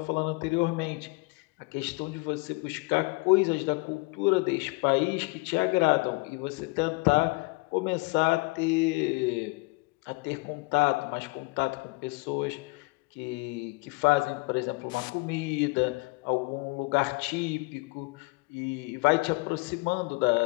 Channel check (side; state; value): right; quieter; 26.3 dB